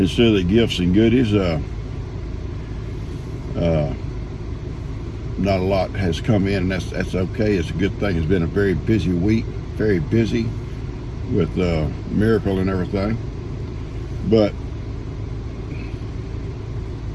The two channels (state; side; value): identical; both; correlation 1.00